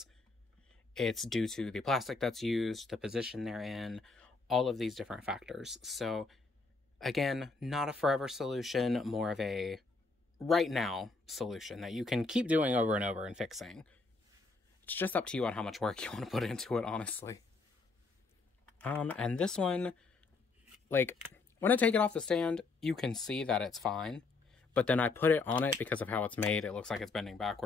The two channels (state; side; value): quieter; right; 3.8 dB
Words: It's due to the plastic that's used, the position they're in, all of these different factors. So, again, not a forever solution, more of a right now solution that you can keep doing over and over and fixing. It's just up to you on how much work you want to put into it, honestly. And this one, like, when I take it off the stand, you can see that it's fine. But then I put it on it because of how it's made. It looks like it's bending